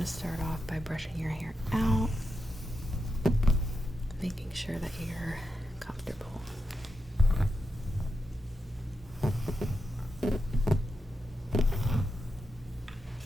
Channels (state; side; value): normal; both; correlation 0.87